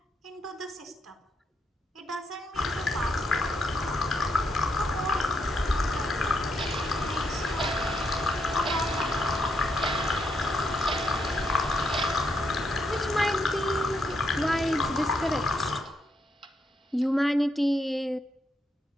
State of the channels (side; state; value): both; normal; correlation 0.79